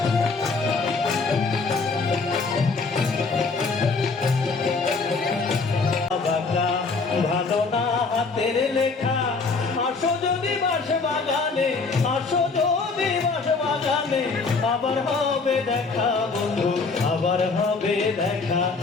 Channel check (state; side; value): quieter; right; 4.3 dB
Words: ভালো না হাতের লেখা আসো যদি বাস বাগানে আসো যদি বাস বাগানে আবার হবে দেখা বন্ধু আবার হবে দেখা